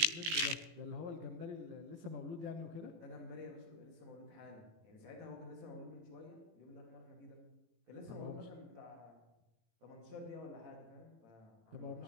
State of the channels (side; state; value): left; late; 18 ms